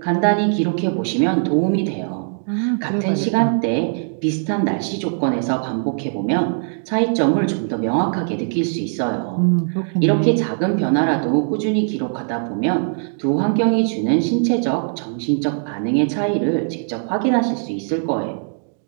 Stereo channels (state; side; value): silent; left; digital silence